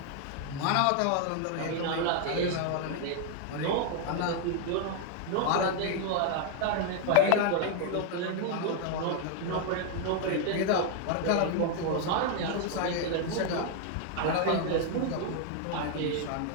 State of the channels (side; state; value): both; different; correlation 0.00